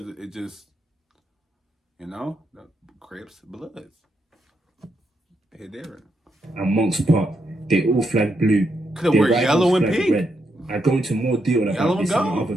it just, you know, the Crips, Bloods. They're different. And Monks Park, they all flagged blue. Could wear yellow and pink. Red. I go into more detail about this in another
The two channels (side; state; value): both; normal; correlation 0.81